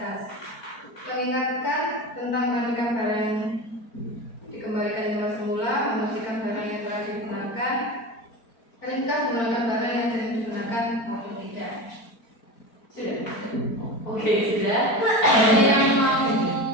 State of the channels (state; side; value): late; right; 4.4 ms